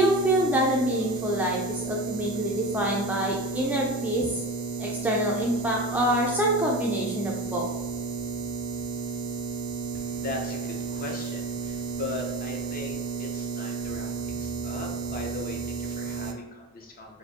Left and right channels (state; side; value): normal; both; correlation 0.30